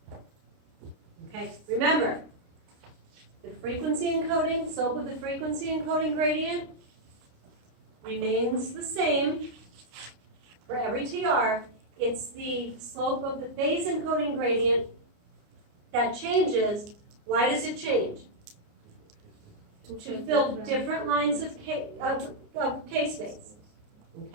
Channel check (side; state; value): left; late; 29 ms